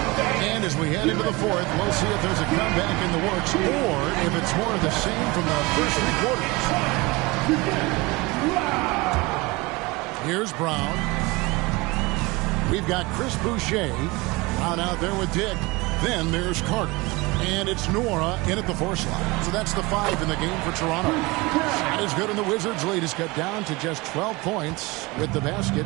And as we head into the fourth, we'll see if there's a comeback in the works or if it's more of the same from the first 3 quarters. Here's Brown. We've got Chris Boucher out there with Dick. Then there's Carter. And it's Nora in at the 4 slot. So that's the 5 in the game for Toronto. Shot is good, and the Wizards' lead is cut down to just 12 points with the basket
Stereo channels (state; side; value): quieter; left; 23.3 dB